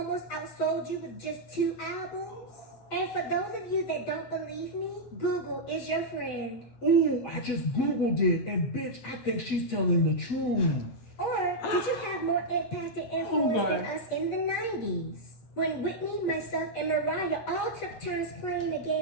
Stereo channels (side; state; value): right; late; 8.1 ms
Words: outsold you with just 2 albums? And for those of you that don't believe me, Google is your friend. Ooh, I just Googled it, and bitch, I think she's telling the truth. Or did you have more impact and influence than us in the 90s? When Whitney, myself, and Mariah all took turns playing the